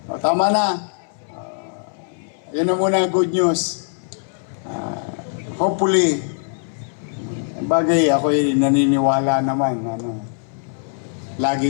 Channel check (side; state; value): right; silent; 64 dB below the other